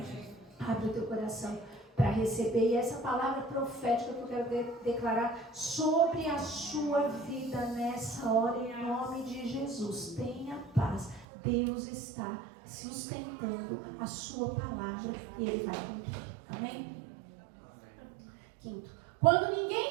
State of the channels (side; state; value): left; drops out; at 11.2 s